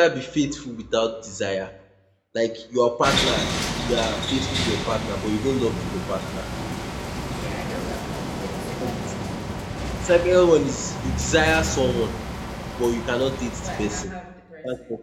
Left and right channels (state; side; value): identical; both; correlation 1.00